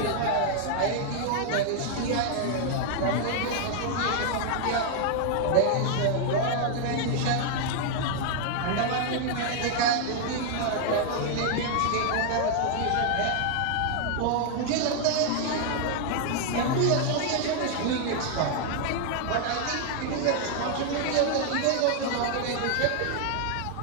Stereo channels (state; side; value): different; both; correlation 0.00